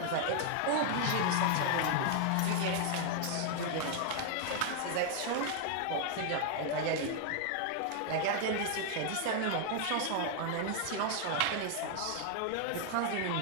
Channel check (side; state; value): both; different; correlation 0.00